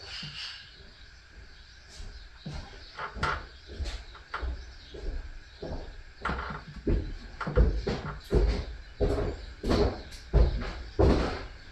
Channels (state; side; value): identical; both; correlation 1.00